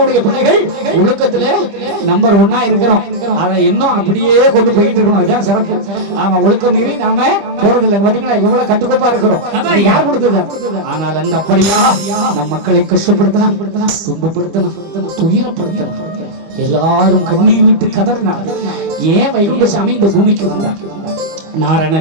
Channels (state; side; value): late; left; 25 ms